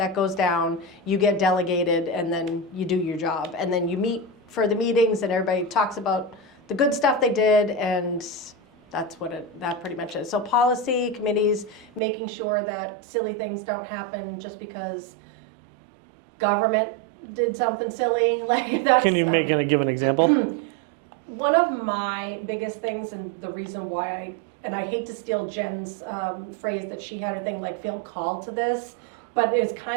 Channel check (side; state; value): left; drops out; at 12.0 s